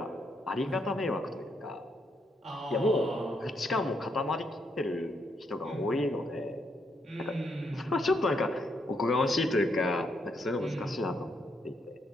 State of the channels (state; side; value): normal; both; correlation 0.77